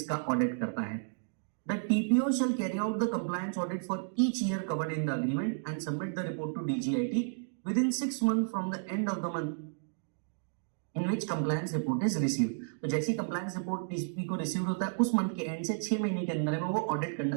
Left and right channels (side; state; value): left; silent; digital silence